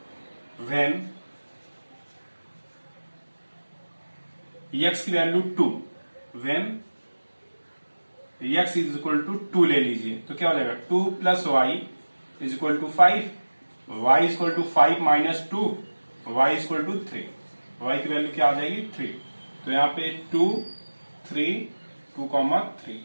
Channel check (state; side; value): inverted; both; correlation -1.00